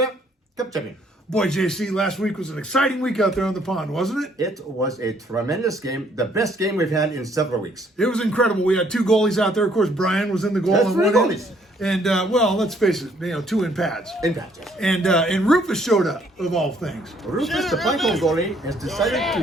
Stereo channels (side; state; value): both; normal; correlation 0.65